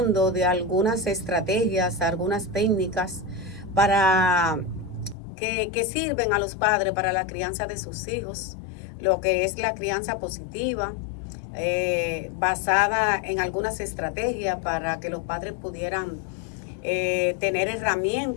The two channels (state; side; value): drops out; right; at 5.2 s